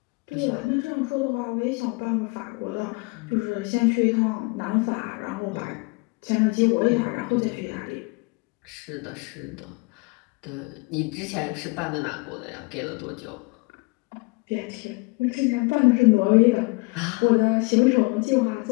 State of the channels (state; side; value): quieter; right; 28.5 dB